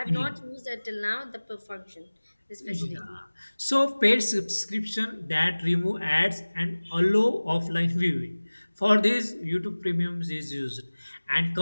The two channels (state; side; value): inverted; both; correlation -1.00